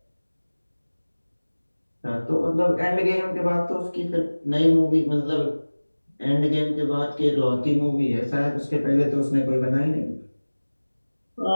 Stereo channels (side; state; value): both; inverted; correlation -1.00